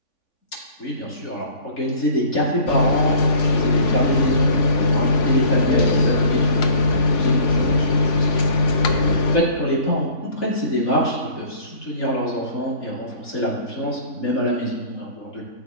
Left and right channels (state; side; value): late; right; 3.5 ms